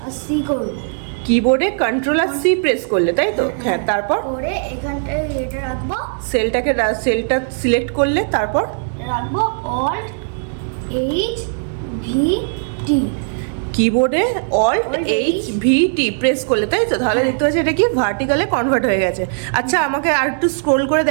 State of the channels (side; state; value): left; silent; digital silence